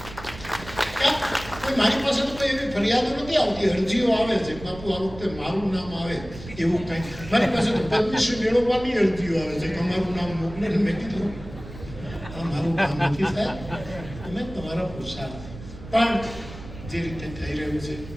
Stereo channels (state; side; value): noise; right; rumble, 14 dB below the sound